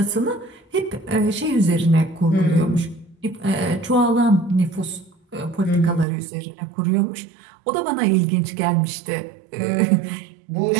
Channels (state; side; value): drops out; left; at 6.1 s